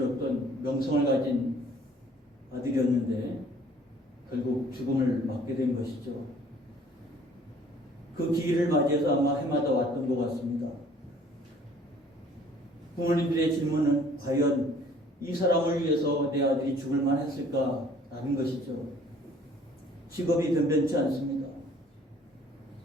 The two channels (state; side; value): normal; both; correlation 0.56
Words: 명성을 가진 아들이었는데 결국 죽음을 맞게 된 것이죠. 그 기일을 맞이해서 아마 해마다 왔던 것 같습니다. 부모님들의 질문은 과연 이 사람을 위해서 내 아들이 죽을 만했을까라는 것이죠. 직업이 변변치 않습니다.